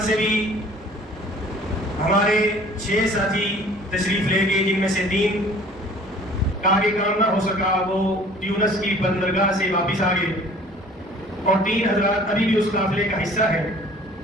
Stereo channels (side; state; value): both; normal; correlation 0.50